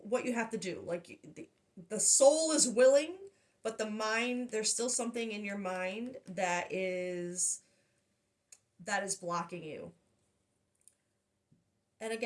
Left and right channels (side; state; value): both; identical; correlation 1.00